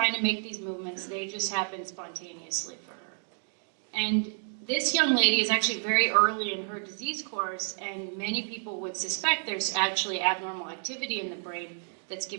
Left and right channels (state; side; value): silent; left; 58 dB below the other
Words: to make these movements, they just happen spontaneously for her. And this young lady is actually very early in her disease course, and many people would suspect there's actually abnormal activity in the brain that's